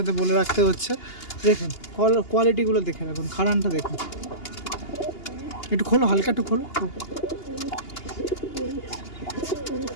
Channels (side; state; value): right; late; 2.8 ms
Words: বলে রাখতে হচ্ছে। দেখুন কোয়ালিটিগুলো দেখে রাখুন, খাড়ানটা দেখুন, একটু খোলো, হালকা একটু খোলো।